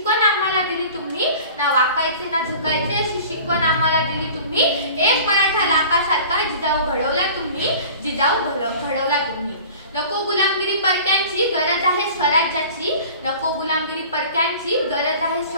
आम्हाला दिली तुम्ही, ना वाकायचे ना झुकायचे अशी शिकवण आम्हाला दिली तुम्ही। एक मराठा लाखासारखा जिजाऊ घडवला तुम्ही, जिजाऊ घडवला तुम्ही। नको गुलामगिरी परक्यांची, गरज आहे स्वराज्याची, नको गुलामगिरी परक्यांची, गरज आहे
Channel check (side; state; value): both; inverted; correlation -0.42